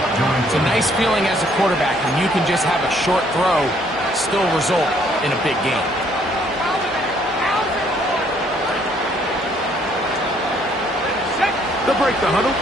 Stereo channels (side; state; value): both; normal; correlation 0.65